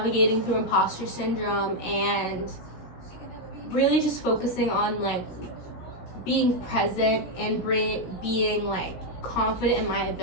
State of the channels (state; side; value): late; right; 17 ms